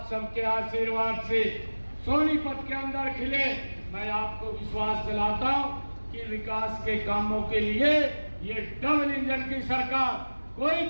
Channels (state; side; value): inverted; both; correlation -1.00